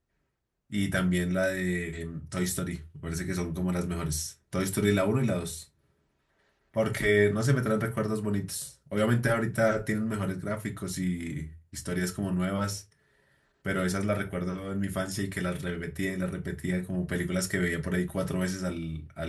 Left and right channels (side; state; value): both; identical; correlation 1.00